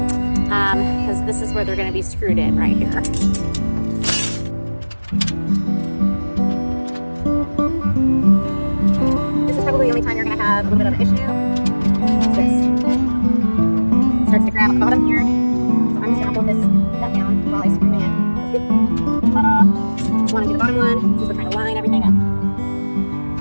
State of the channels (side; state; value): both; inverted; correlation -1.00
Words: because this is where they're going to be screwed in right here. This is probably the only time you're going to have a little bit of an issue. It's this. Starts to grab at the bottom here. So I'm just going to hold this nut down while I screw in. Ta-da! Want to do the bottom one, just to kind of line everything up.